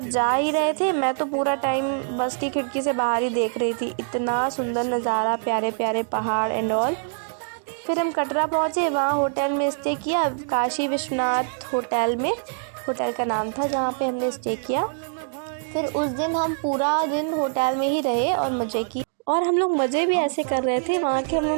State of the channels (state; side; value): silent; left; digital silence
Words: जा ही रहे थे मैं तो पूरा टाइम बस की खिड़की से बाहर ही देख रही थी। इतना सुंदर नज़ारा, प्यारे प्यारे पहाड़ एंड ऑल। फिर हम कटरा पहुँचे, वहाँ होटल में स्टे किया, काशी विश्वनाथ होटल में, होटल का नाम था जहाँ पे हमने स्टे किया। फिर उस दिन हम पूरा दिन होटल में ही रहे और मज़े किए। और हम लोग मज़े भी ऐसे कर रहे थे, वहाँ के हम